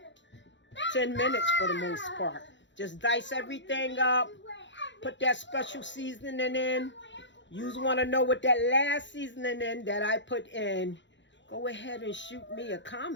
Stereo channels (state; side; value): late; right; 0.53 ms